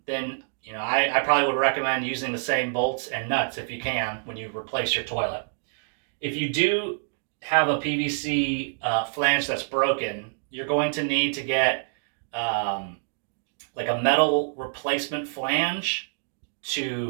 then I probably would recommend using the same bolts and nuts if you can when you replace your toilet. If you do have a PVC flange that's broken, you're going to need to get like a metal replacement flange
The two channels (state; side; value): silent; left; digital silence